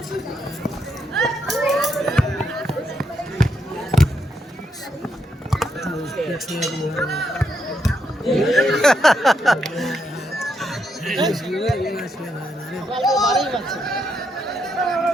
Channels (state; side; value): normal; both; correlation 0.79